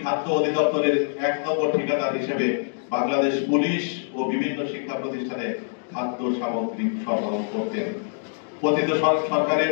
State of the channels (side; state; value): right; silent; digital silence